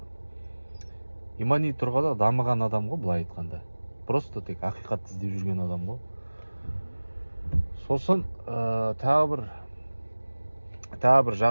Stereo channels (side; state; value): both; inverted; correlation -1.00